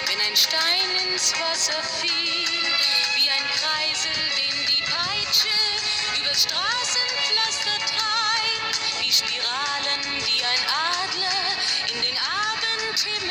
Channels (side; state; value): both; identical; correlation 1.00